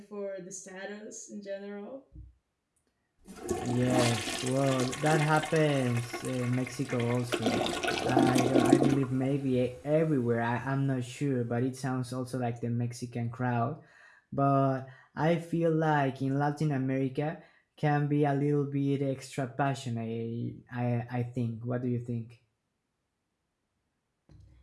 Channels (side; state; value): both; identical; correlation 1.00